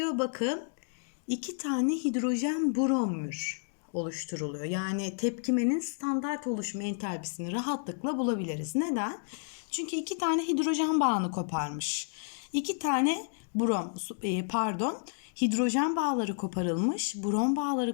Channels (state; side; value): silent; right; digital silence